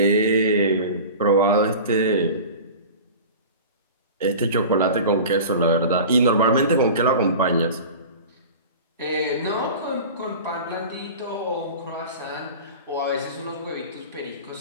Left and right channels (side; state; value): both; inverted; correlation -0.36